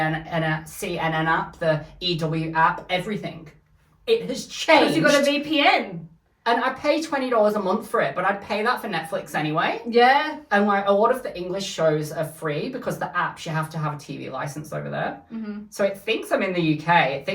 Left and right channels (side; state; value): both; identical; correlation 1.00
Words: app, the EW app, everything. It has changed. Because you got a VPN. And I pay $20 a month for it, but I'd pay that for Netflix anyway. Yeah. And like a lot of the English shows are free because the apps, you have to have a TV license over there. So it thinks I'm in the UK. It